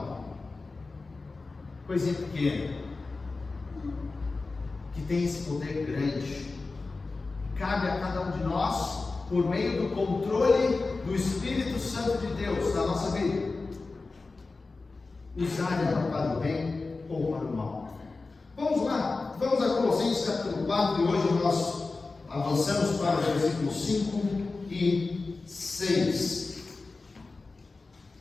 Coisinha pequena que tem esse poder grande. Cabe a cada um de nós, por meio do controle do Espírito Santo de Deus na nossa vida, usar ela para o bem ou para o mal. Vamos lá, vamos a Colossenses capítulo 4, e hoje nós avançamos para os versículos 5 e 6.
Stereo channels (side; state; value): right; quieter; 3.8 dB